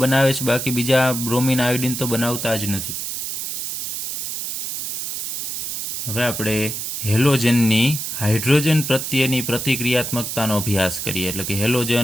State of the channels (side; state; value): right; noise; hiss, 4 dB below the sound